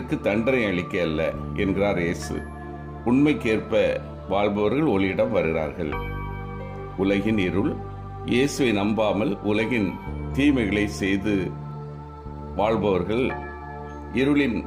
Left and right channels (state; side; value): identical; both; correlation 1.00